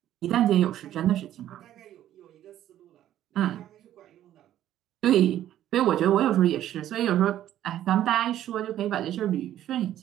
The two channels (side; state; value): left; quieter; 12.1 dB